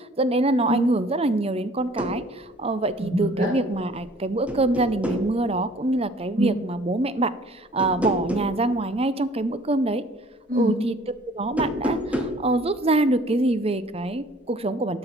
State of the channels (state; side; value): normal; both; correlation 0.53